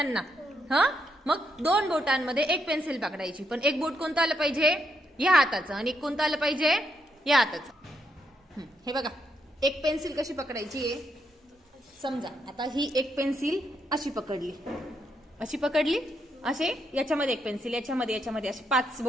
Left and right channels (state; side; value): normal; both; correlation 0.79